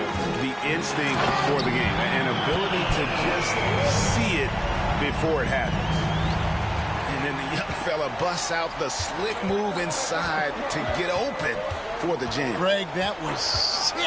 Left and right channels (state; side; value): identical; both; correlation 1.00